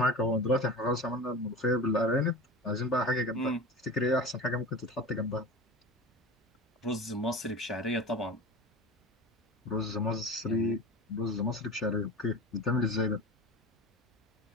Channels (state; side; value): normal; both; correlation 0.32